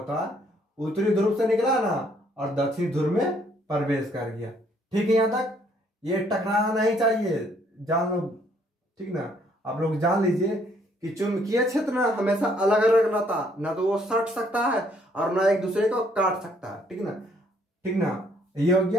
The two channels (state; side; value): normal; both; correlation 0.66